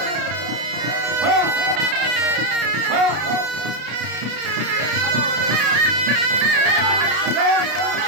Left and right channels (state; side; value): late; left; 33 ms